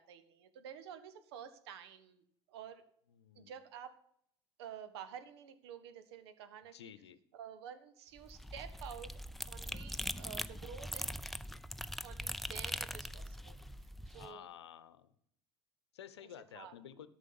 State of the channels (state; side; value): normal; both; correlation 0.69